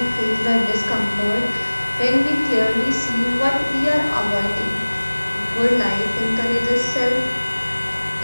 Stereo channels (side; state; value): both; inverted; correlation -1.00